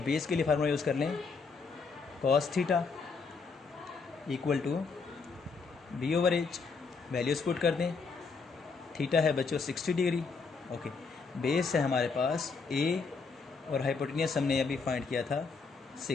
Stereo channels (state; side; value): quieter; right; 4.7 dB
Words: बेस के लिए फार्मूला यूज़ कर लें, cos theta equal to B over H. Values put कर दें, थीटा है बच्चों 60 डिग्री। ओके, बेस है हमारे पास ए और हाइपोटेनियस हमने अभी फाइंड किया था